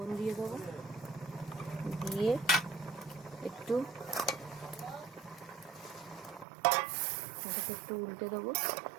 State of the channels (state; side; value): drops out; left; at 6.5 s